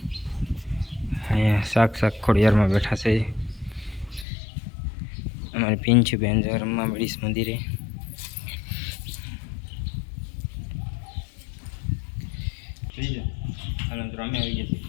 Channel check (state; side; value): drops out; right; at 4.2 s